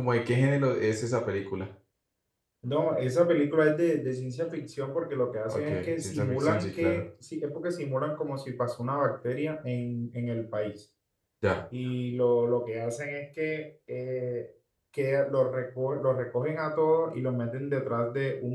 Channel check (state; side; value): identical; both; correlation 1.00